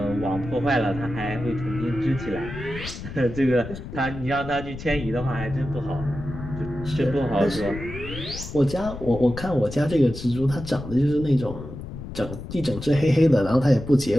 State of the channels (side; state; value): left; noise; rumble, 10 dB below the sound